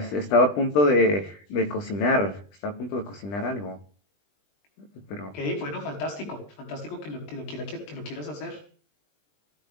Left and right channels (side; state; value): right; late; 20 ms